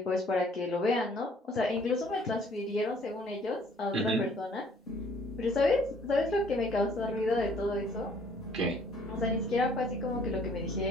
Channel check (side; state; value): both; normal; correlation 0.59